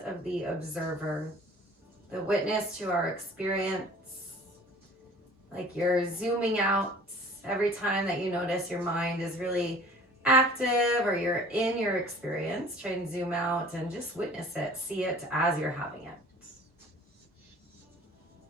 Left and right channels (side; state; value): both; normal; correlation 0.48